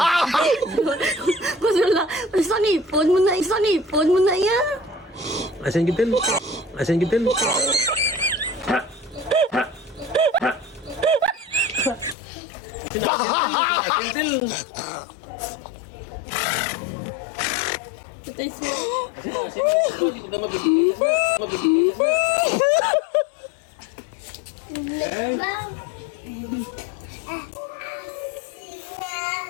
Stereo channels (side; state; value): right; drops out; at 12.2 s